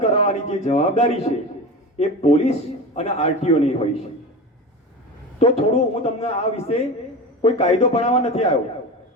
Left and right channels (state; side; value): normal; both; correlation 0.28